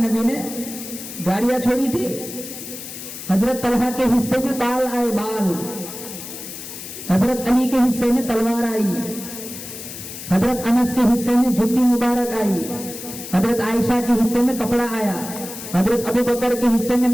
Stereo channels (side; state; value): left; noise; hiss, 11 dB below the sound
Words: نے، گاڑیاں چھوڑی تھی. حضرت طلحہ کے حصے میں بال آئے، بال. حضرت علی کے حصے میں تلوار آئی، حضرت انس کے حصے میں جوتی مبارک آئی، حضرت عائشہ کے حصے میں کپڑا آیا، حضرت ابو بکر کے حصے میں